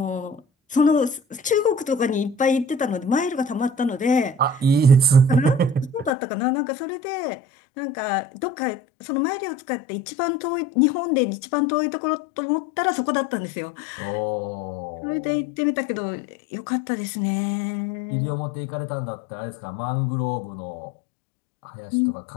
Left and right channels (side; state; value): right; drops out; at 6.1 s